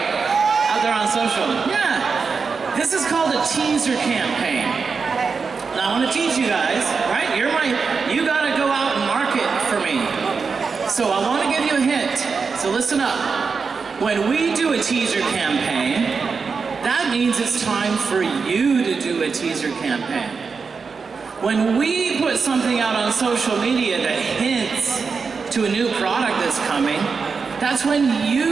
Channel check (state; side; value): quieter; left; 5.1 dB